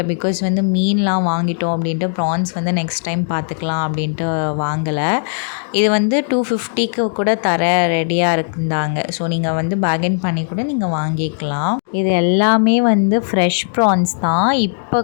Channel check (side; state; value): right; silent; digital silence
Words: பிகாஸ் வந்து மீன்லாம் வாங்கிட்டோம் அப்படின்ட்டு ப்ரான்ஸ் வந்து நெக்ஸ்ட் டைம் பார்த்துக்கலாம் அப்படின்ட்டு வாங்கலை. இது வந்து 250க்கு கூட தர ரெடியாக இருந்தாங்க. ஸோ நீங்கள் வந்து பார்கெயின் பண்ணி கூட நீங்கள் வாங்கிக்கலாம். இது எல்லாமே வந்து ஃப்ரெஷ் ப்ரான்ஸ் தான். இப்போ